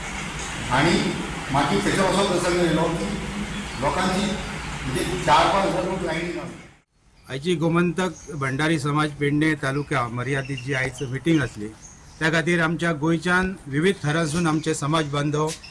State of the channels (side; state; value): both; identical; correlation 1.00